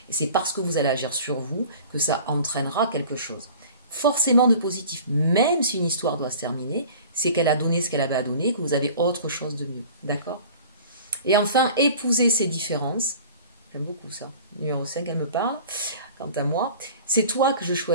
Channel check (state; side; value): inverted; both; correlation -0.44